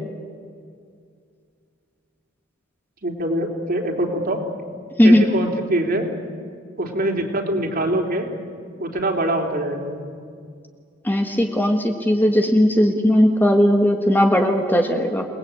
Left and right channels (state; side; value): normal; both; correlation 0.77